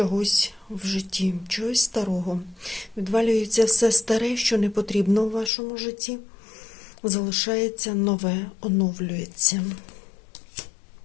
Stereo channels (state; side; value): drops out; right; at 5.5 s